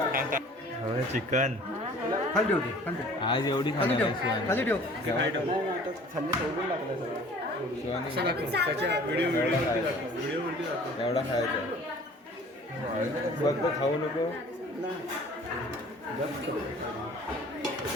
चिकन आज एवढी खाणार एवढा खायचा फक्त खाऊ नको.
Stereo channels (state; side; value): normal; both; correlation 0.49